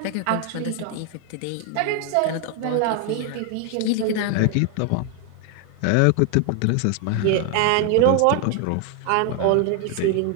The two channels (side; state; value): both; different; correlation 0.01